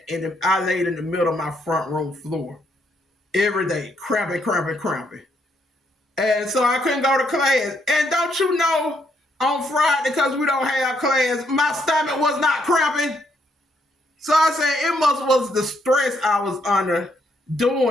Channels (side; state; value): both; normal; correlation 0.74